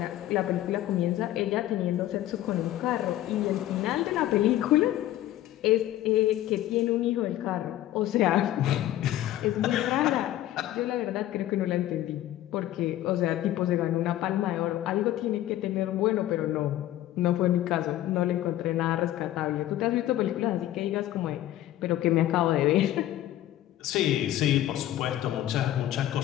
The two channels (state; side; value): quieter; right; 13.8 dB